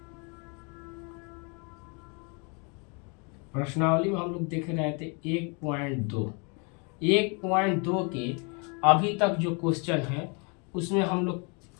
प्रश्नावली में, हम लोग देख रहे थे 1.2 के अभी तक जो क्वेश्चन है उसमें हम लोग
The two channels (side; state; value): right; quieter; 33.9 dB